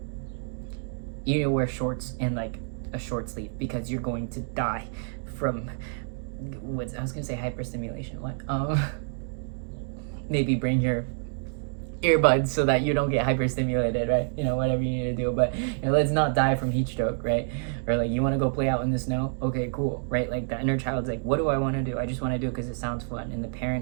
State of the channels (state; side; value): silent; left; digital silence